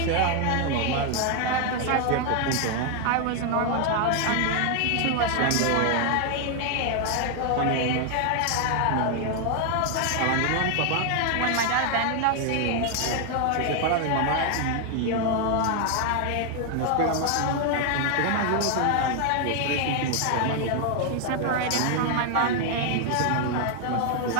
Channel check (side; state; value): both; different; correlation 0.01